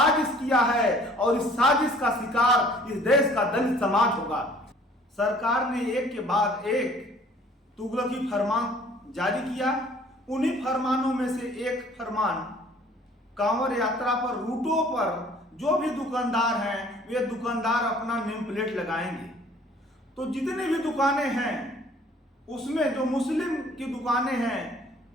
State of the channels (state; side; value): normal; both; correlation 0.54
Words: किया है और इस साजिश का शिकार इस देश का दलित समाज होगा। सरकार ने एक के बाद एक तुगलकी फरमान जारी किया। उन्हीं फरमानों में से एक फरमान, कांवड़ यात्रा पर रूटों पर जो भी दुकानदार हैं वे दुकानदार अपना नेम प्लेट लगाएंगे। तो जितनी भी दुकानें हैं उसमें जो मुस्लिम की दुकानें हैं